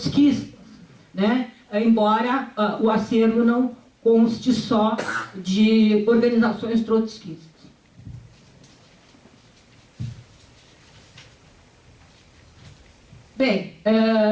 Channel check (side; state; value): both; identical; correlation 1.00